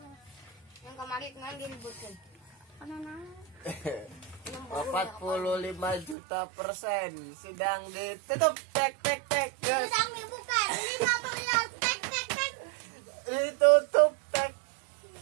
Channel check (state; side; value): drops out; left; at 6.2 s